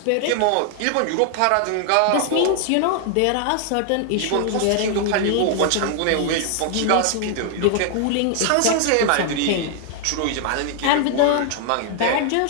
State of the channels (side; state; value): both; different; correlation 0.00